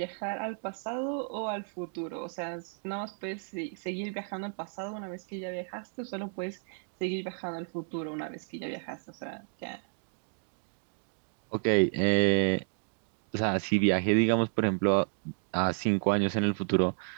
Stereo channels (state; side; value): silent; left; 57 dB below the other